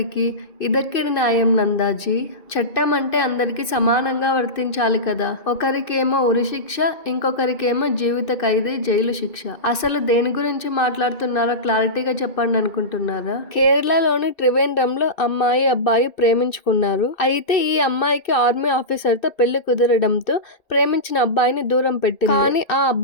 ఇదెక్కడి న్యాయం నందాజీ? చట్టం అంటే అందరికీ సమానంగా వర్తించాలి కదా. ఒకరికేమో ఉరిశిక్ష, ఇంకొకరికేమో జీవిత ఖైదీ జైలు శిక్ష. అసలు దేని గురించి మాట్లాడుతున్నారో క్లారిటీగా చెప్పండి అనుకుంటున్నారా? కేరళలోని త్రివేంద్రంలో అమ్మాయి అబ్బాయి ప్రేమించుకున్నారు. అయితే ఈ అమ్మాయికి ఆర్మీ ఆఫీసర్ తో పెళ్లి కుదరడంతో ప్రేమించిన అబ్బాయిని దూరం పెట్టింది. కానీ ఆ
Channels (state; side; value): late; right; 2.6 ms